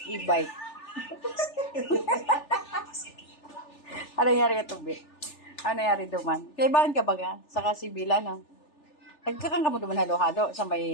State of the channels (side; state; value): right; late; 3.4 ms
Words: e-bike? Ano nangyari kito, Bi? Ano nangyari duman? Kaibahan ka ba nga? Sa Kasibila, no? Nagkakang ka mo duman halo-halo sa